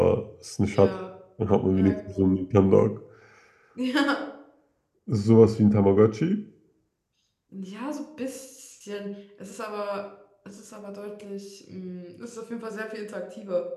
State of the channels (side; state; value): both; identical; correlation 1.00